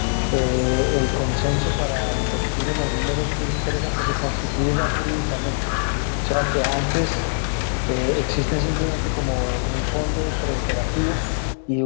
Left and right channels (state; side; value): silent; right; digital silence